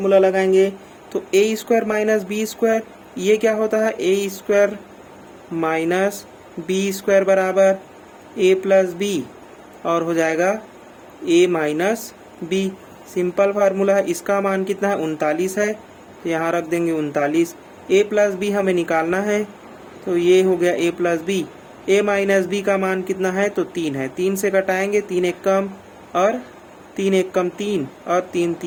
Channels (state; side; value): identical; both; correlation 1.00